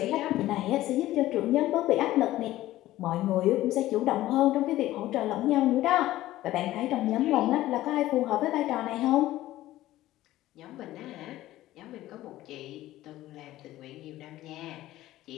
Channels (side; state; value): right; quieter; 15.3 dB